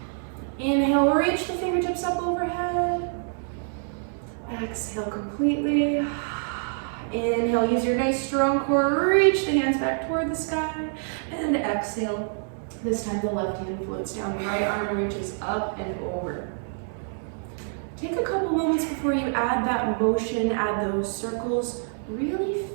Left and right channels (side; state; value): left; silent; 61 dB below the other